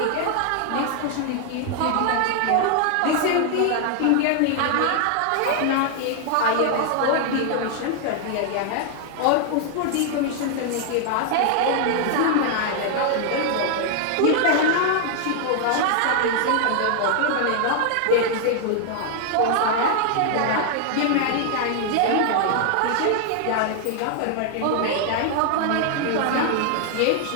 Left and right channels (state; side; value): different; both; correlation 0.00